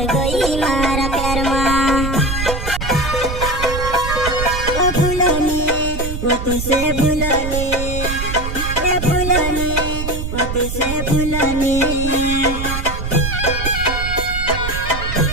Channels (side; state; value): right; noise; rumble, 5 dB below the sound